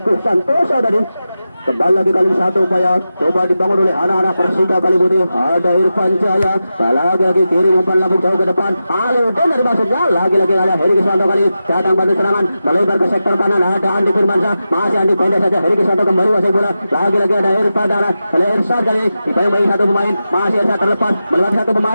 Santoso tadi. Kembali lagi kali satu upaya coba dibangun oleh anak-anak Persika Kaliputih. Ada Irfan Jaya, lagi-lagi kiri umpan lambung jauh ke depan. Halidin dari maksudnya lagi-lagi ada Heri Krisanto kali datang bantu serangan melebar ke sektor kanan. Ada Andi Firmansyah, masih Andi pendek saja. Heri Krisanto kembali wasai bola. Lagi-lagi ada Irfan Dana, oleh Irsyad kali dibayang satu pemain, masih Irsyad terlepas melewati satu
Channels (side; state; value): both; inverted; correlation -0.91